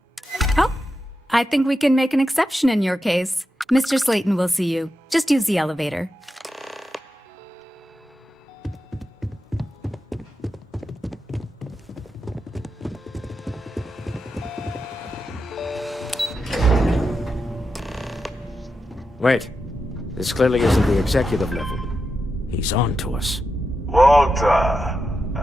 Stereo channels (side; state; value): both; normal; correlation 0.88